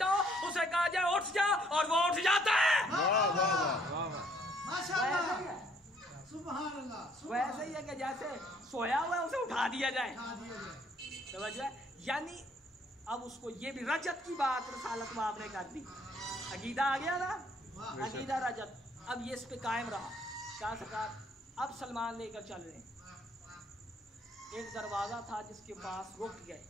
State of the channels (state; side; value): normal; both; correlation 0.64